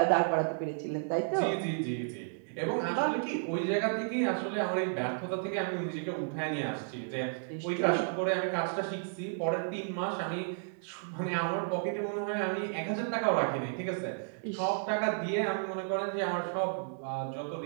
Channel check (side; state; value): left; silent; digital silence